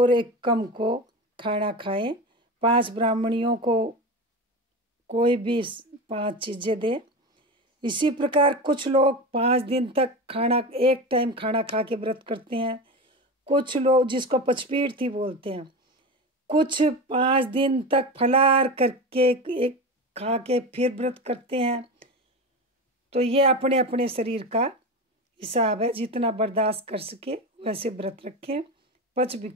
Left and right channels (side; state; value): both; normal; correlation 0.24